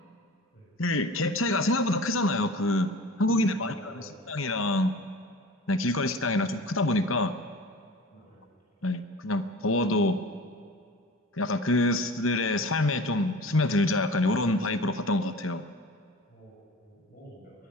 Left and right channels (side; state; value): both; normal; correlation 0.39